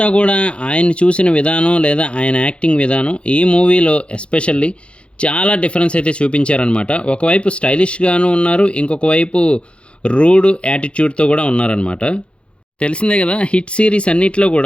కూడా ఆయన చూసిన విధానం లేదా ఆయన యాక్టింగ్ విధానం ఈ మూవీలో ఎస్పెషల్లీ చాలా డిఫరెన్స్ అయితే చూపించారనమాట. ఒకవైపు స్టైలిష్గాను ఉన్నారు, ఇంకొక వైపు రూడ్ యాటిట్యూడ్తో కూడా ఉన్నారనమాట. తెలిసిందే కదా, హిట్ సిరీస్ అన్నిట్లో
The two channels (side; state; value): right; late; 0.059 ms